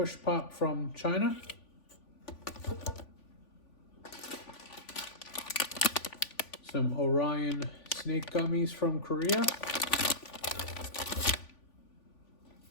Pop from China. Some Orion Snake Gummies from Korea.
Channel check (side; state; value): right; late; 3.5 ms